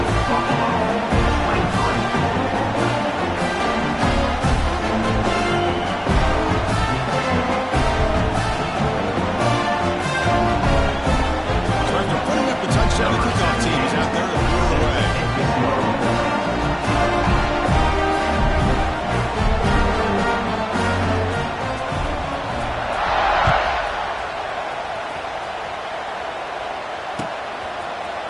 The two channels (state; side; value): identical; both; correlation 1.00